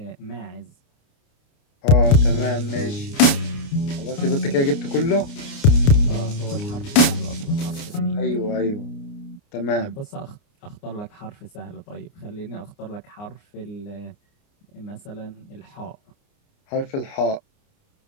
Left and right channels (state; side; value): late; right; 29 ms